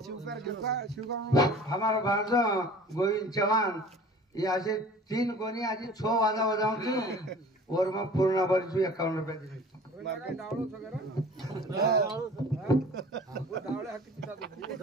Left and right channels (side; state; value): both; normal; correlation 0.44